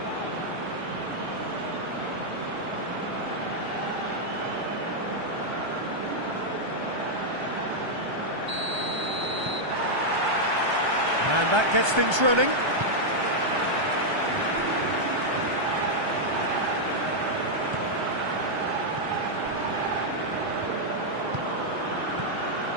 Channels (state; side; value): late; left; 1.3 ms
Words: And that gets things running.